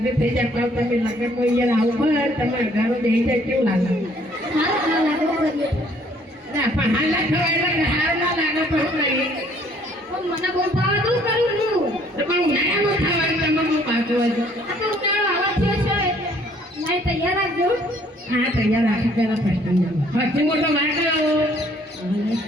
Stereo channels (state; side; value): normal; both; correlation 0.61